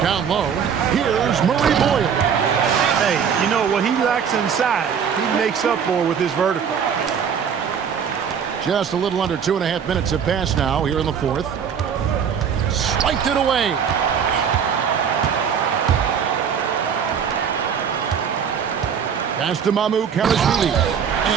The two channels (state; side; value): quieter; left; 7.4 dB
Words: Down low, here's Murray Boyle. Hey, you know what he lacks inside, he makes up for with his vertical. Just a little under 2.5 minutes have passed now here in the fourth. Swiped it away. Pass to MyCareer.